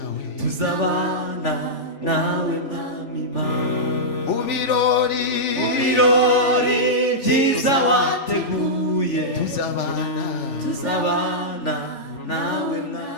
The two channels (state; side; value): late; right; 3.4 ms